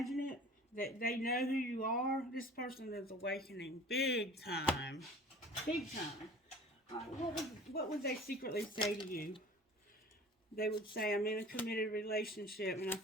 it? That they know who you are? This person is awakening big time. Big time. What would they secretly say to you? They would say, I'm in a committed relationship and I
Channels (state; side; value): normal; both; correlation 0.44